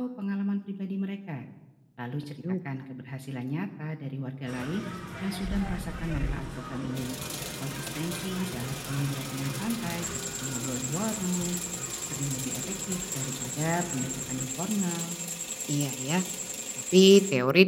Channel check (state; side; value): identical; both; correlation 1.00